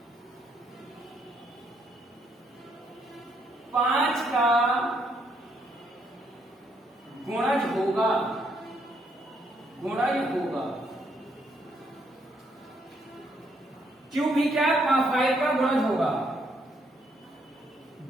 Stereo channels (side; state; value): both; normal; correlation 0.73